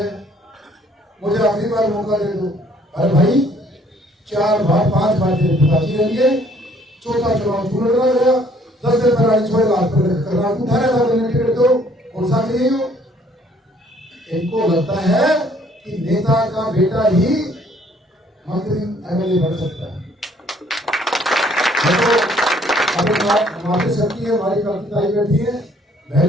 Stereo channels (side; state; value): both; normal; correlation 0.62